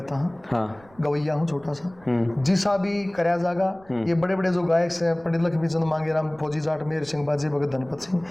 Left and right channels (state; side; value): noise; right; rumble, 27 dB below the sound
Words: हूँ, हाँ गवैया हूँ छोटा सा, जिसा भी करया जागा। ये बड़े बड़े जो गायक से पंडित लक्ष्मी चंद मांगेराम, फौजी जाट, मेहर सिंह, बाजे भगत, धनपत